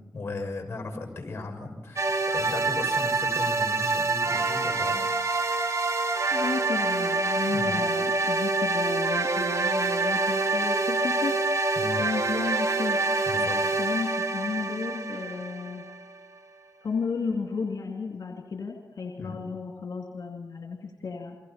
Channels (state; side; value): normal; both; correlation 0.48